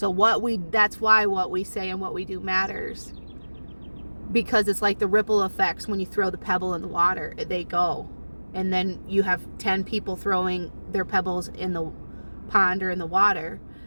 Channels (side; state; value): both; inverted; correlation -1.00